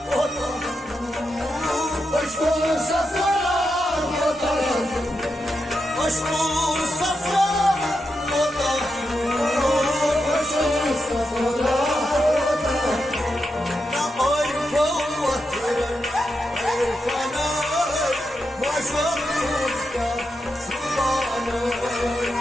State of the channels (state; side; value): normal; both; correlation 0.86